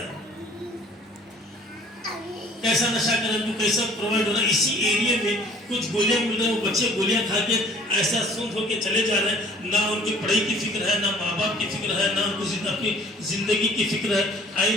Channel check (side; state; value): both; normal; correlation 0.53